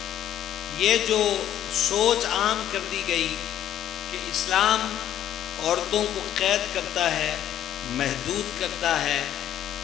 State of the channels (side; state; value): right; quieter; 11.2 dB